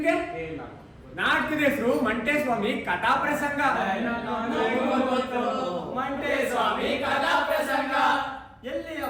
ನಾಟಕದ ಹೆಸರು ಮಂಟೇಸ್ವಾಮಿ ಕಥಾ ಪ್ರಸಂಗ. ಮಂಟೇಸ್ವಾಮಿ ಕಥಾ ಪ್ರಸಂಗ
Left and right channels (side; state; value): both; identical; correlation 1.00